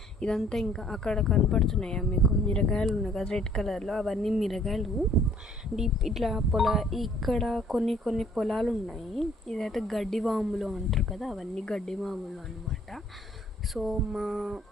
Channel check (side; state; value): both; normal; correlation 0.60